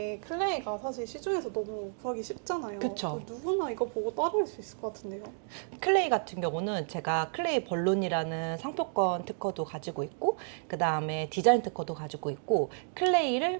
클레이가 사실 시중에서 너무 구하기 쉽잖아요. 그쵸. 누구나 이거 보고 따라할 수 있을 것 같은데요. 클레이 같은 경우는 제가 클레이 벌룬이라는 상표권 특허도 가지고 있고 그 다음에 디자인 특허도 가지고 있고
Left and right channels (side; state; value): left; silent; 57 dB below the other